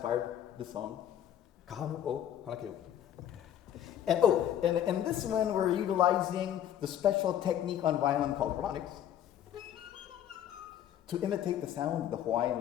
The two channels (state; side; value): quieter; right; 10.6 dB